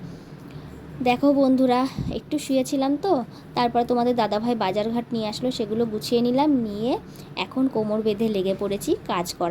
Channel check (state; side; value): identical; both; correlation 1.00